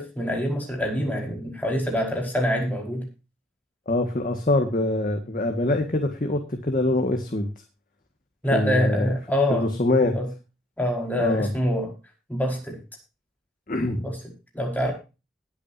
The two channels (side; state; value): both; normal; correlation 0.60